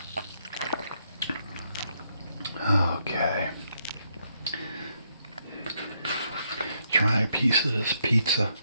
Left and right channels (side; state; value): both; inverted; correlation -0.76